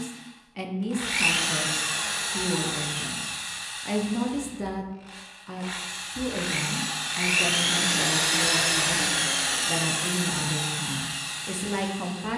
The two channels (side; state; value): both; identical; correlation 1.00